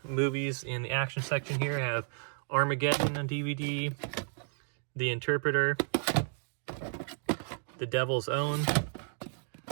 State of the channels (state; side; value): silent; left; 56 dB below the other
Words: movies in the action section here have Armageddon on DVD, The Interpreter, The Devil's Own,